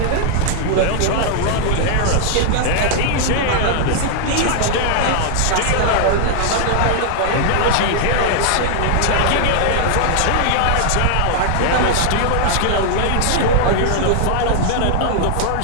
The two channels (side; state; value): both; different; correlation 0.00